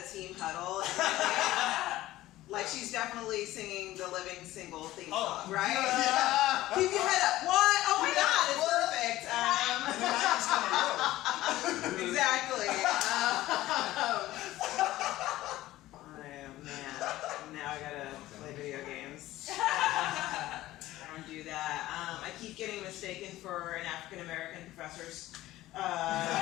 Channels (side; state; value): right; quieter; 16.0 dB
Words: team huddle, like she's definitely singing the Living Single theme song, right? Yeah. Keep your head up. What? Oh my God, it's perfect. Exactly. Man, now I gotta play video games. I don't do that. I keep getting mistaken for an African American professor's.